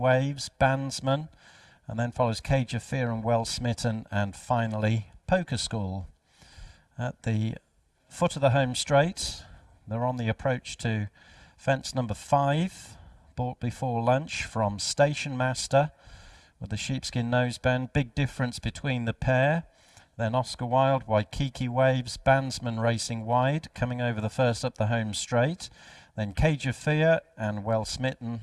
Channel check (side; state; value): both; identical; correlation 1.00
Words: Bandsman, and then follows Cage of Fear and Well Smitten, and finally Poker Skull. At the foot of the home straight, they're on the approach to fence number 5, bought before lunch from Station Master with the sheepskin noseband. Big Difference between the pair. Then Oscar Wilde, Waikiki Waves, Bandsman racing wide, coming over the first up the home straight. Then Cage of Fear and Well Smitten,